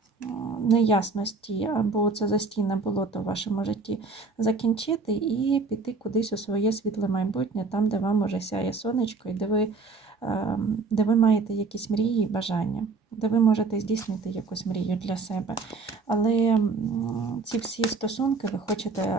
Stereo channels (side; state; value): left; quieter; 4.2 dB